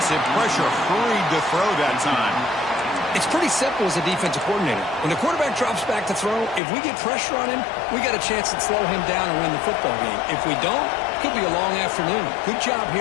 pressure hurried to throw that time. It's pretty simple as a defensive coordinator. When the quarterback drops back to throw, if we get pressure on him, we got a chance to slow him down and win the football game. If we don't, it could be a long afternoon. Good job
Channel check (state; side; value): drops out; right; at 6.6 s